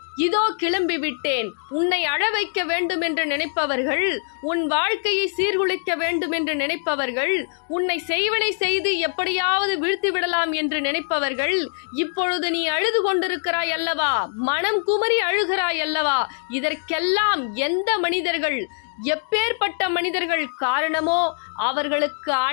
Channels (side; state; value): right; silent; digital silence